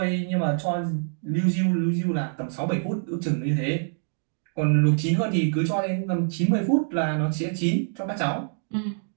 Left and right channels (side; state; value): left; silent; digital silence